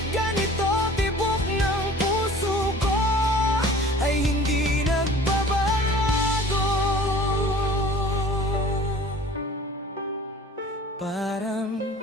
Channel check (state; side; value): normal; both; correlation 0.46